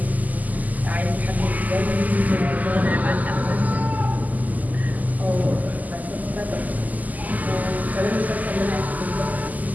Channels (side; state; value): left; late; 0.080 ms